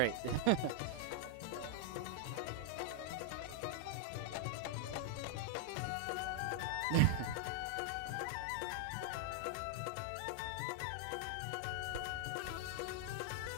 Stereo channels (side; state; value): both; different; correlation -0.01